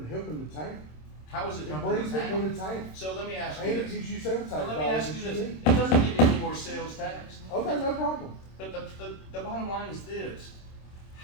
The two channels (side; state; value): right; late; 26 ms